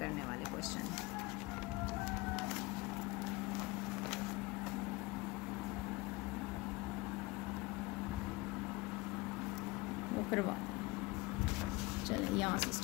वाले क्वेश्चन हैं. करवा चलिए यहाँ से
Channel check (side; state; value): right; quieter; 22.6 dB